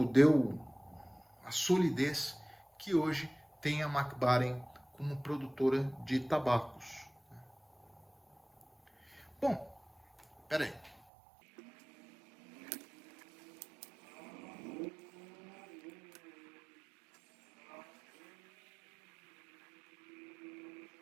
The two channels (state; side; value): drops out; left; at 11.0 s